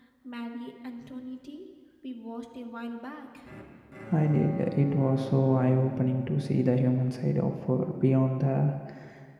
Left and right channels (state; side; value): identical; both; correlation 1.00